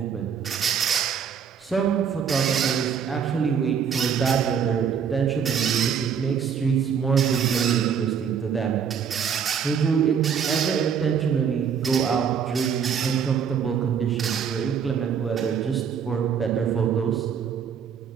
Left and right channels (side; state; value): left; quieter; 7.3 dB